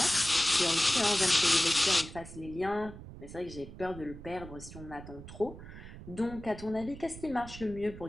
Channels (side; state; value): right; noise; rumble, 14 dB below the sound